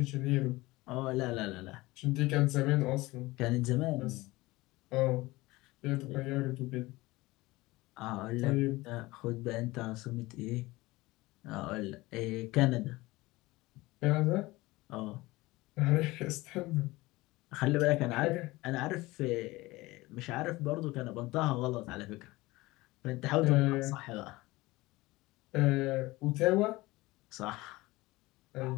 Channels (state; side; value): quieter; right; 20.4 dB